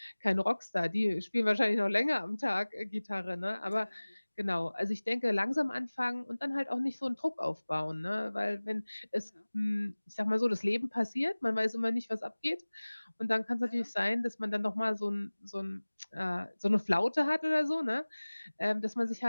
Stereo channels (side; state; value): both; inverted; correlation -1.00